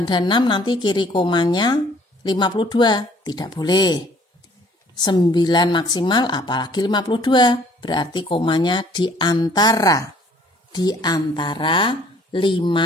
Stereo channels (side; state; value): both; normal; correlation 0.58